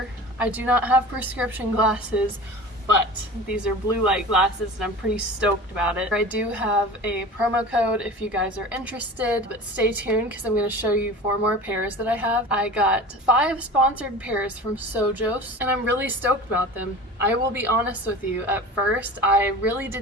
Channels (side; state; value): both; normal; correlation 0.36